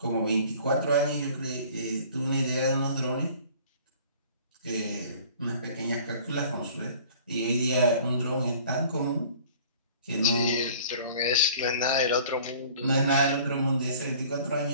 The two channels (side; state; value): both; inverted; correlation -0.49